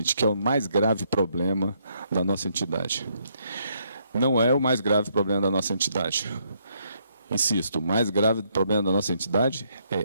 que é o mais grave problema da nossa entidade. Não é o mais grave problema da nossa entidade. Insisto, o mais grave problema da nossa entidade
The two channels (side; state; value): both; inverted; correlation -0.73